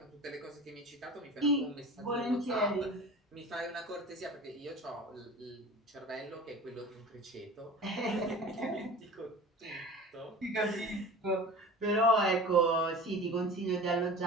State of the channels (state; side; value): normal; both; correlation 0.37